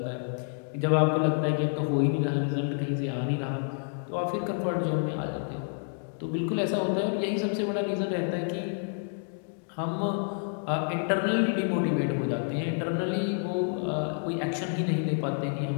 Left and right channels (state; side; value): silent; right; 59 dB below the other